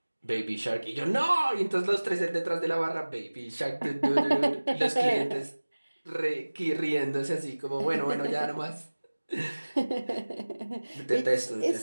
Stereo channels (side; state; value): both; inverted; correlation -1.00